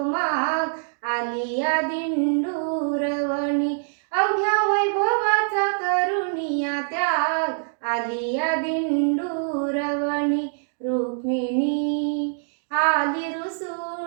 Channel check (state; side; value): silent; left; digital silence